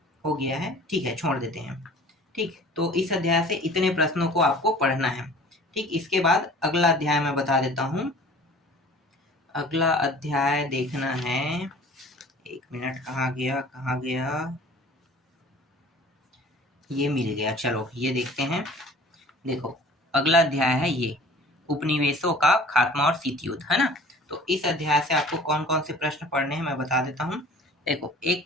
हो गया है। ठीक है, छोड़ देते हैं। ठीक, तो इस अध्याय से इतने प्रश्नों को आपको पढ़ना है। ठीक, इसके बाद अगला अध्याय मैं बता देता हूँ। अगला अध्याय देखना है, 1 मिनट, कहाँ गया, ये मिल गया, चलो ये देखते हैं। देखो, अगला अध्याय है ये, उपनिवेशों का खात्मा और शीत युद्ध, है ना। तो इस अध्याय से आपको कौन कौन से प्रश्न पढ़ने हैं मैं बता देता हूँ। देखो, एक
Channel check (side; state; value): both; normal; correlation 0.46